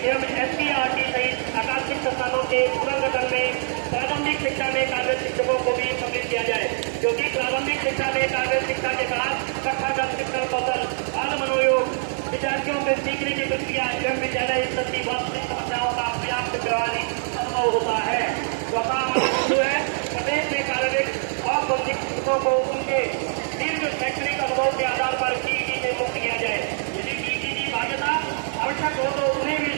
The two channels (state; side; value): silent; left; digital silence